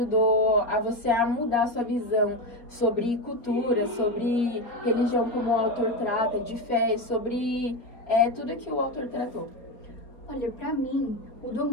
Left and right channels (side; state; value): right; late; 4.3 ms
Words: a você a mudar a sua visão sobre cultura, sobre religião, como o autor trata, de fé, sobre tudo que o autor tratou. Olha, pra mim, mudou